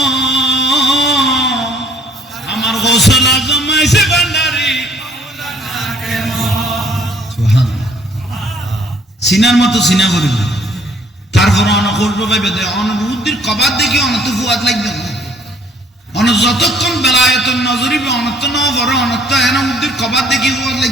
আমার গোসল আজম মাইজ ভান্ডারী সিনার মতো সিনা করিব তারপর অনেক করবো ভাই বেদে অনুভূতির কবাদ দেখি অনত ফুয়াদ লাগবে অন যতক্ষণ বেলায়তন নজরিবে অনত ন বড় অনত এনা উদ্দির কবাদ দেখি ফুয়াদ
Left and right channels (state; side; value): normal; both; correlation 0.61